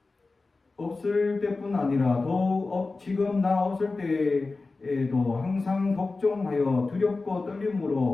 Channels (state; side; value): quieter; right; 3.7 dB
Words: 없을 때뿐 아니라 더욱 지금 나 없을 때에도 항상 복종하여 두렵고